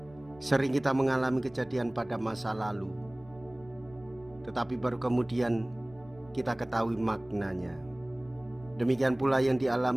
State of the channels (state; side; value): noise; left; rumble, 25 dB below the sound